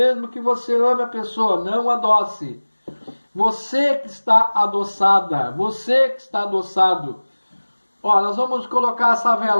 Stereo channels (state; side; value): inverted; both; correlation -1.00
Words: que você ame a pessoa, não adoce. Você que está adoçada, você que está adoçado. Ó, nós vamos colocar essa